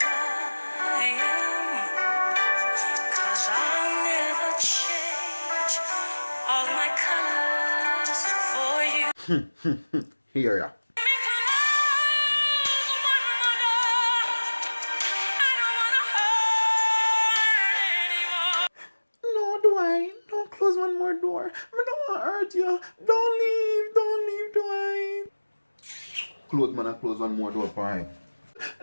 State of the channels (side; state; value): both; inverted; correlation -1.00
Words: I am, 'cause I'll never change all my colors for you. Here ya. No, Dwight, don't close one more door. I don't want to hurt you. Don't leave, Dwight. Close man and close one more door for him.